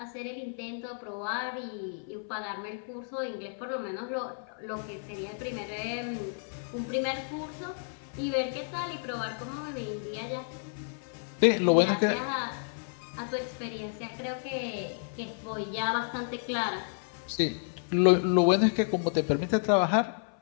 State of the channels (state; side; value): silent; right; 56 dB below the other